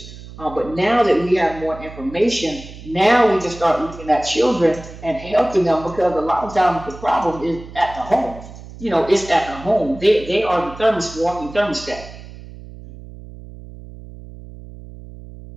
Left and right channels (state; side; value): noise; right; hum, 16 dB below the sound